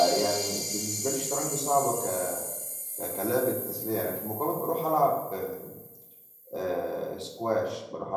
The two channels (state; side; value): identical; both; correlation 1.00